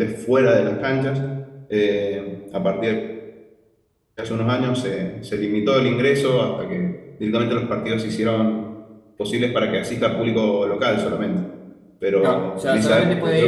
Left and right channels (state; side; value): identical; both; correlation 1.00